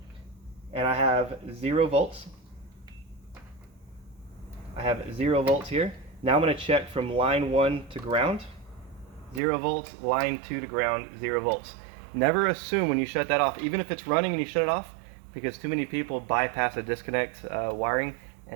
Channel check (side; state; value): left; drops out; at 9.4 s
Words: and I have 0 volts. I have 0 volts here. Now I'm going to check from line 1 to ground. 0 volts, line 2 to ground, 0 volts. Never assume when you shut that off, even if it's running and you shut it off, because too many people bypass a disconnect wiring